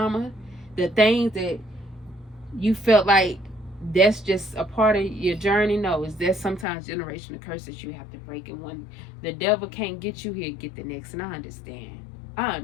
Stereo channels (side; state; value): right; drops out; at 6.7 s